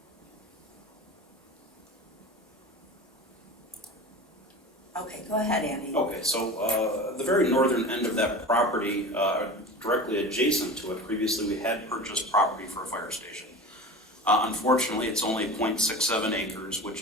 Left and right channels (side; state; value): both; normal; correlation 0.32